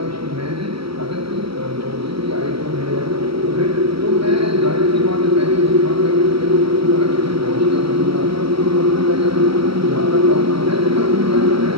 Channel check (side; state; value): left; late; 0.75 ms